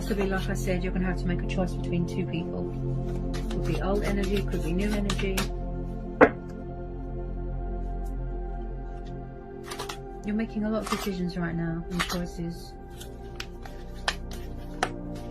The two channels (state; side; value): noise; left; hum, 27 dB below the sound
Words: like I said, you're going to have to make a choice between two people. Could be old energy, could be new energy. You're making a lot of decisions right now and choices.